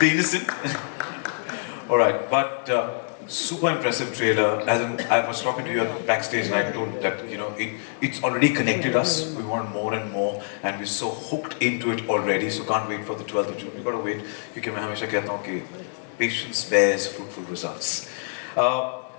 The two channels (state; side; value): silent; right; digital silence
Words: innocent. All right, but super impressive trailer. As in, I was talking to you at backstage, and I told that it's already connected us. We want more and more, and we're so hooked into it already. So can't wait for the 12th of June. We got to wait. क्योंकि मैं हमेशा कहता हूँ कि patience bears fruitful results.